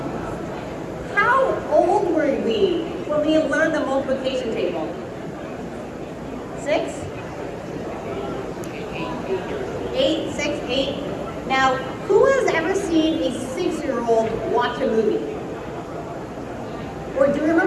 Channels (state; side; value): identical; both; correlation 1.00